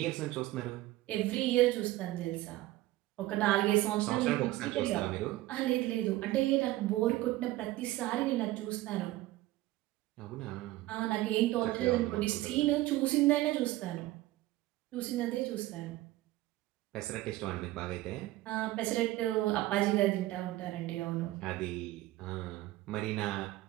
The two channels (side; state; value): left; quieter; 17.1 dB